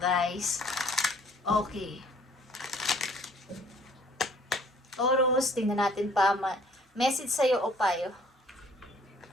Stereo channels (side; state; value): both; normal; correlation 0.57